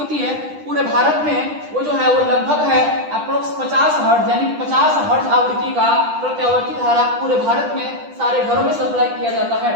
है पूरे भारत में, वो जो है वो लगभग है अप्रोक्स 50 हर्ट्ज, यानी 50 हर्ट्ज आवृत्ति का प्रत्यावर्ती धारा पूरे भारत में सारे घरों में सप्लाई किया जाता है।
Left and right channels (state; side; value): late; left; 10 ms